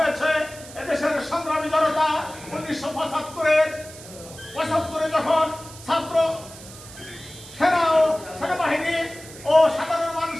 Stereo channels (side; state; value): right; noise; hiss, 17 dB below the sound